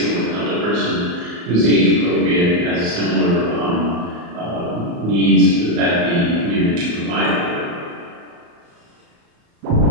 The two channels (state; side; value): late; left; 34 ms